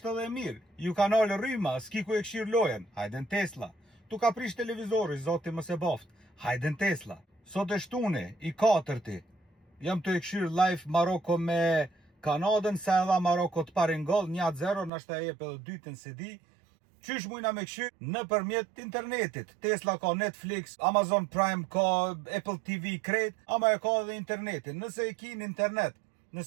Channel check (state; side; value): drops out; left; at 14.9 s